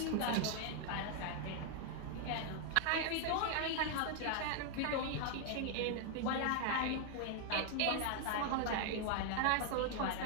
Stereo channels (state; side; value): different; both; correlation 0.00